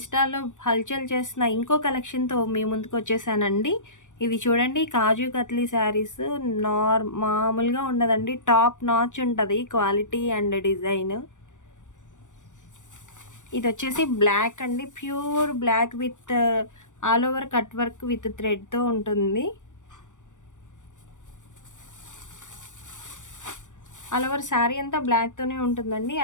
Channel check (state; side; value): late; right; 0.86 ms